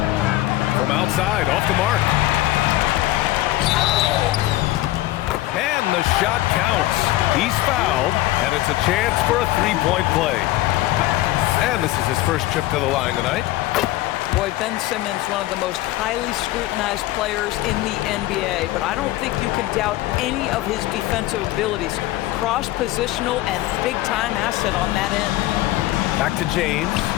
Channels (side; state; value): right; quieter; 16.6 dB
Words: From outside, off the mark. And the shot counts. He's fouled, and it's a chance for a three-point play. And this is his first trip to the line tonight. Boy, Ben Simmons, one of the most highly scrutinized players in the NBA, but I don't think you can doubt any of his defensive abilities. Cross-positional and big-time asset on that end. Back to James.